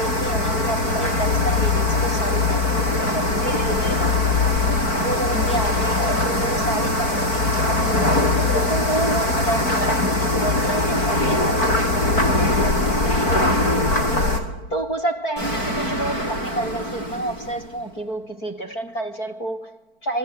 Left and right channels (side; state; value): right; late; 4.5 ms